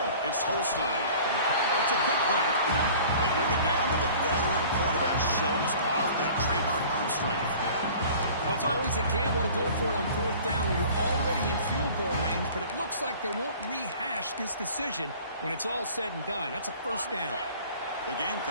It's Holstein. It's a quick grab. They bring him down with a veteran quarterback. Shows off that trademark arm strength. Well, it's always a gamble to go for it on 4th down when you're already in field goal range, but it looks like they won't rehash this decision when it's all said and done. That's a first down. The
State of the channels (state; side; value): inverted; both; correlation -0.46